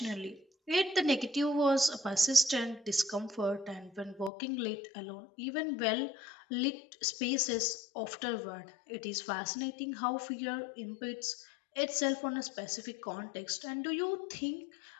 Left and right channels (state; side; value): drops out; right; at 4.3 s